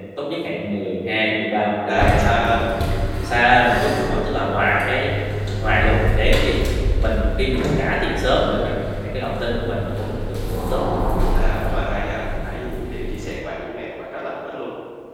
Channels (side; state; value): both; identical; correlation 1.00